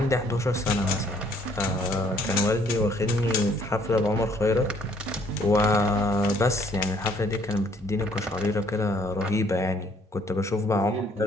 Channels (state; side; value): normal; both; correlation 0.63